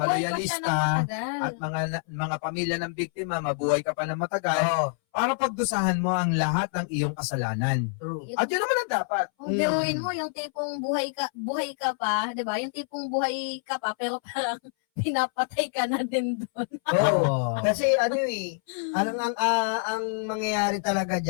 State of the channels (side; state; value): right; silent; 60 dB below the other